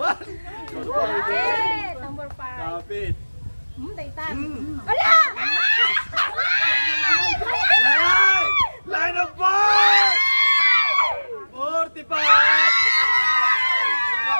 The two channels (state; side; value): inverted; both; correlation -1.00